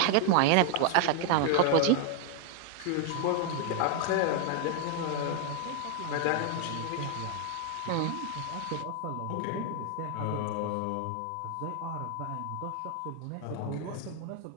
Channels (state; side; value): different; both; correlation 0.00